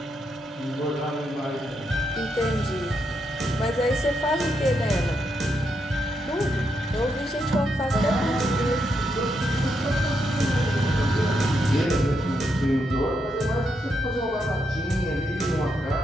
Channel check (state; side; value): normal; both; correlation 0.81